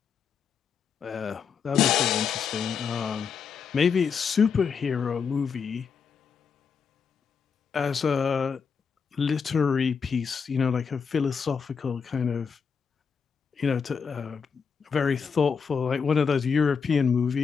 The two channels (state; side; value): quieter; right; 6.1 dB